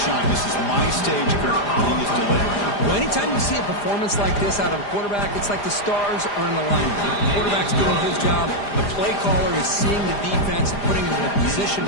This is my stage, Kurt, and he is delivering. Well, anytime you see a performance like this out of a quarterback, it's like the stars are in alignment. The quarterback's doing his job. The play caller is seeing the defense and putting him in a position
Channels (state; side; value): late; right; 4.9 ms